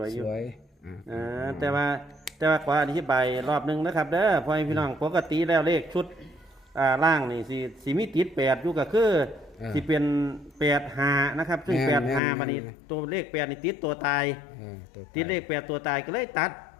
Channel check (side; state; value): right; drops out; at 12.2 s